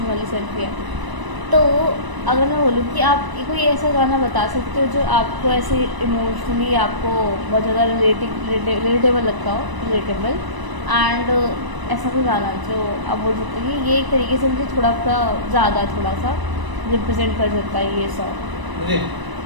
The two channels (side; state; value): left; late; 1.0 ms